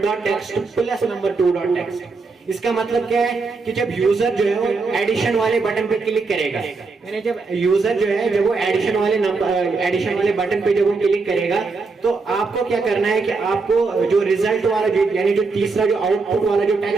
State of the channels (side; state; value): left; quieter; 4.2 dB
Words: plus number 2.text। इसका मतलब क्या है कि जब यूजर जो है वो एडिशन वाले बटन पे क्लिक करेगा, यानी जब यूजर जो है जब वो एडिशन वाले बटन पे जब वो क्लिक करेगा, तो आपको क्या करना है कि आपको जो रिजल्ट वाला यानी जो तीसरा जो आउटपुट वाला जो